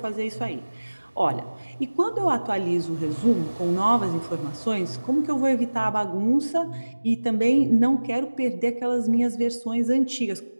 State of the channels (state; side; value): inverted; both; correlation -1.00